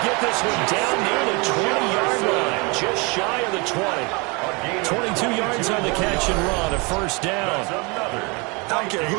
get this one down near the 20-yard line, just shy of the 20. 22 yards on the catch and run, a first down. I don't care who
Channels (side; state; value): left; quieter; 29.1 dB